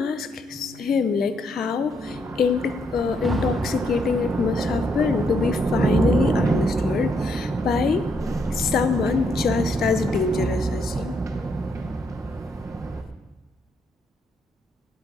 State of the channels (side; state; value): both; normal; correlation 0.74